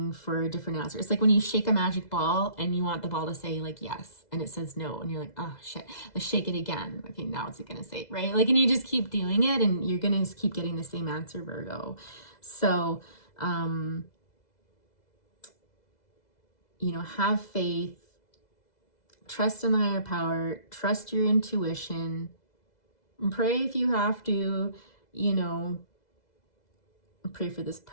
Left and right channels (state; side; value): late; right; 2.0 ms